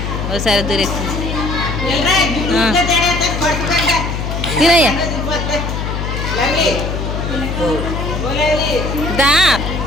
ఒకసారి దూరేస్తుంది తినయ్యా దా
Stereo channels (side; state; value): left; noise; hum, 3 dB below the sound